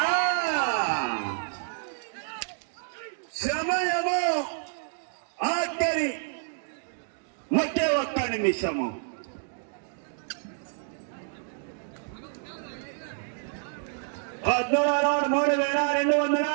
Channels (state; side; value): silent; left; digital silence